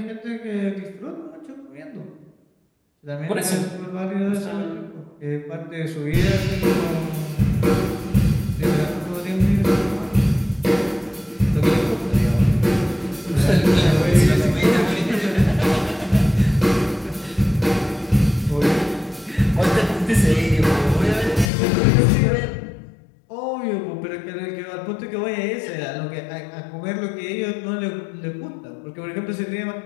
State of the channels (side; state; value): right; drops out; at 21.5 s